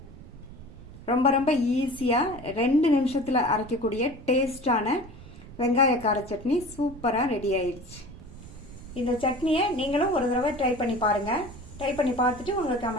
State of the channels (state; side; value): noise; right; rumble, 17 dB below the sound